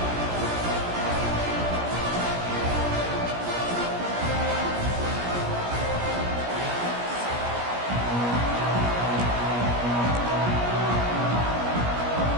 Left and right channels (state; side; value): late; left; 17 ms